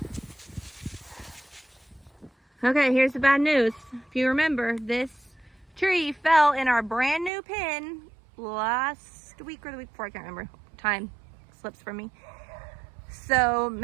Okay, here's the bad news. If you remember, this tree fell in our brand new pen last week or the week before, I can't remember. Time slips from me. So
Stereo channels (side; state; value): left; drops out; at 7.3 s